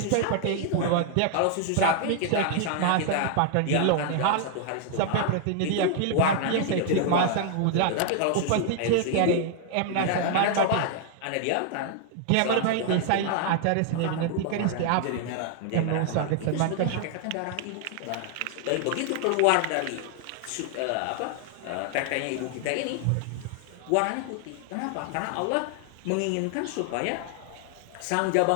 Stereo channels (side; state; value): both; different; correlation 0.00